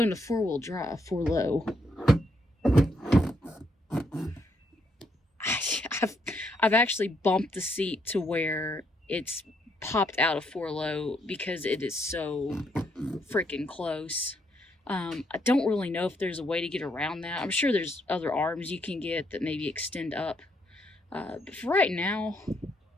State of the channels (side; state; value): both; normal; correlation 0.74